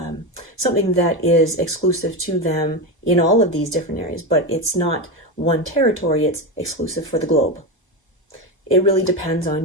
something that is exclusive to them in all of these different areas, but it's not one territory, it's exclusive for the globe. It really depends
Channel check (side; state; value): both; normal; correlation 0.16